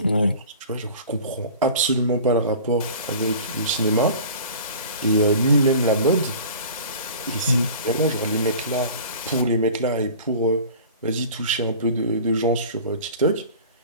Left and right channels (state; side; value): inverted; both; correlation -0.42